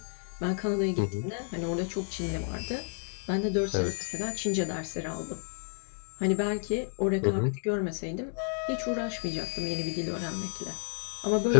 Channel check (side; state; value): right; silent; 57 dB below the other